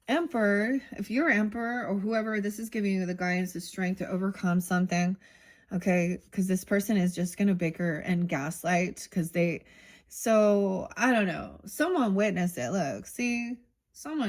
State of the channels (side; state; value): both; identical; correlation 1.00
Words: Emperor, if you're Emperor or whoever, this is giving you the guidance, the strength to overcome something. Okay, because this person is just going to bicker and gaslight because so I don't know. Someone witnessed it. Look, see,